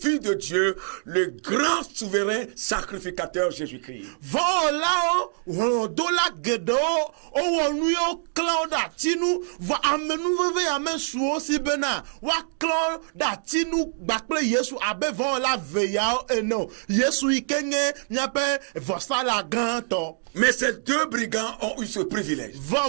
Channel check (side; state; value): left; silent; digital silence